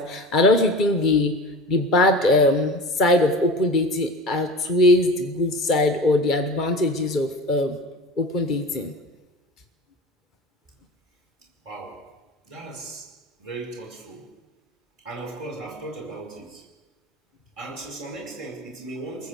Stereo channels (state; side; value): normal; both; correlation 0.33